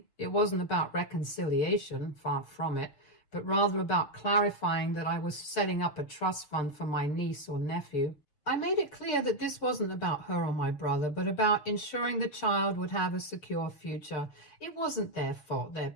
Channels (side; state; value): right; late; 6.7 ms